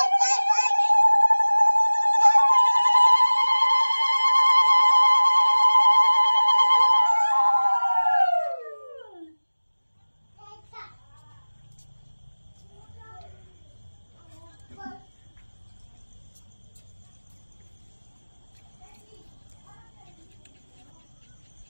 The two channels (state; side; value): inverted; both; correlation -1.00